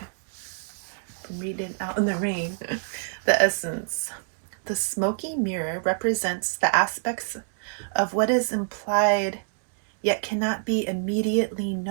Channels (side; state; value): left; silent; 60 dB below the other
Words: I'm reading out in the rain. The essence. The smoky mirror represents the aspects of what is implied yet cannot be immediately